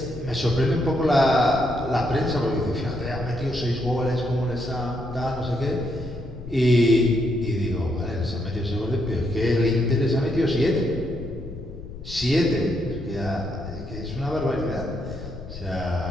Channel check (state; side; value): noise; left; rumble, 12 dB below the sound